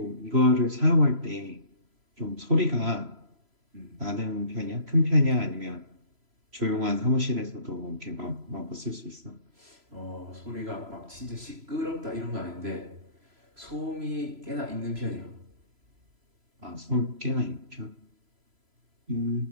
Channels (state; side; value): late; left; 3.0 ms